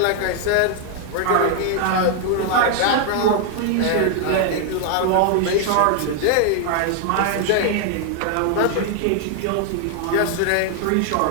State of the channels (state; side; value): different; both; correlation 0.00